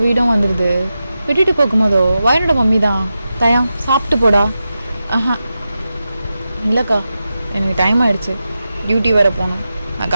வீடும் வந்துடுது. விட்டுட்டு போகும்போதோ வயனோட மம்மி தான், தயம் சாப்பிட்டு போடா. இல்லைக்கா, எனக்கு டைம் ஆகிடுச்சு, டியூட்டி வேறு போகணும், நான்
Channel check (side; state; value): both; inverted; correlation -0.91